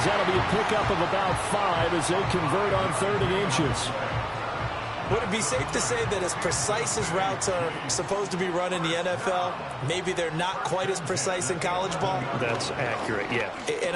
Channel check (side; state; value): both; identical; correlation 1.00